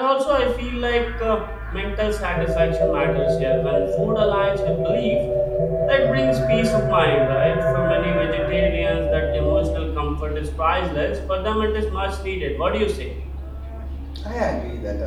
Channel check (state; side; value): identical; both; correlation 1.00